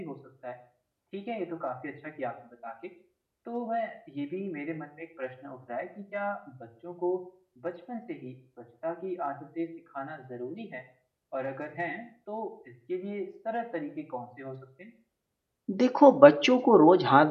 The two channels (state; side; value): identical; both; correlation 1.00